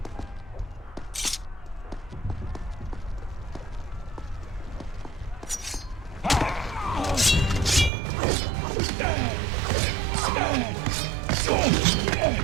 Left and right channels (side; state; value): left; drops out; at 7.9 s